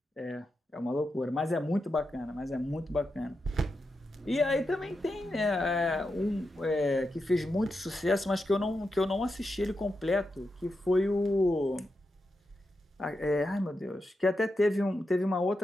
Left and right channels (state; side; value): normal; both; correlation 0.87